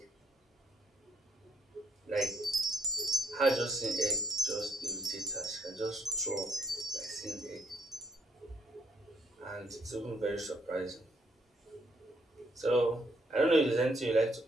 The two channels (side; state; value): both; normal; correlation 0.72